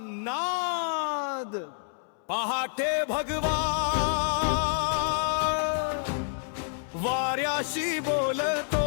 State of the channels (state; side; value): silent; right; 59 dB below the other